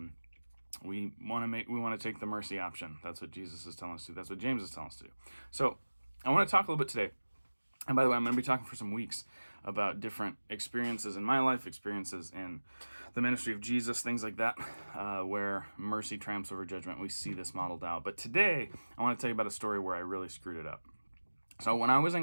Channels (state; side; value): inverted; both; correlation -1.00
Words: we want to take the mercy option. That's what Jesus is telling us to do. That's what James is telling us to do. So I want to talk a little bit today. And by the way, I'm going to be talking for some weeks about different experiences in my life, experiences in the ministry of Jesus, things like that, where mercy triumphs over judgment. We see this modeled out. But today, I want to tell you about a story where I really screwed it up. So when I was